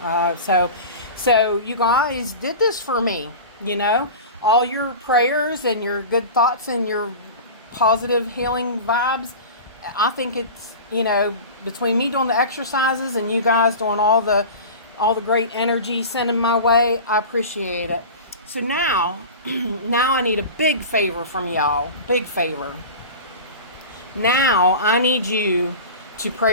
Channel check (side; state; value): both; inverted; correlation -0.33